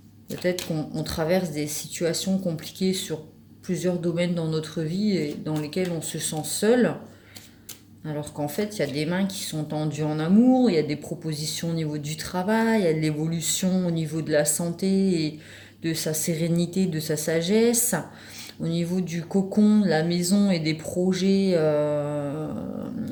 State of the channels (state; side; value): identical; both; correlation 1.00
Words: Peut-être qu'on traverse des situations compliquées sur plusieurs domaines dans notre vie et dans lesquels on se sent seul. Alors qu'en fait, il y a des mains qui sont tendues en amour, il y a des propositions au niveau du travail, il y a de l'évolution au niveau de la santé et de sa sérénité, de sa sagesse. Au niveau du cocon, de la maison et des projets